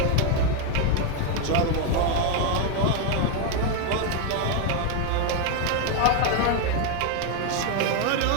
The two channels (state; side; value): different; both; correlation 0.01